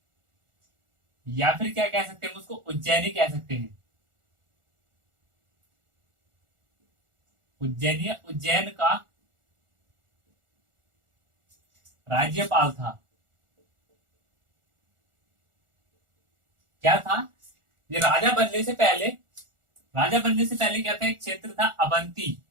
या फिर क्या कह सकते हैं उसको, उज्जैनी कह सकते हैं। उज्जैन का राज्यपाल था। क्या था ये? राजा बनने से पहले क्या था, एक क्षेत्र था अवंती,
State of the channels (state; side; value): late; left; 1.4 ms